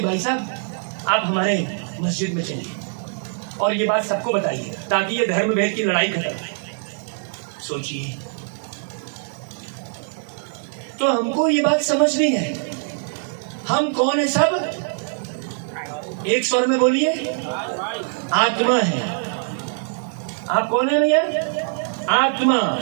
भाई साहब आप हमारे मस्जिद में चलिए और ये बात सबको बताइए ताकि ये धर्म भेद की लड़ाई खत्म हो। सोचिए, तो हमको ये बात समझनी है हम कौन है? सब एक स्वर में बोलिए, आत्मा है। आप कौन है भैया? आत्मा।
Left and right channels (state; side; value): silent; left; digital silence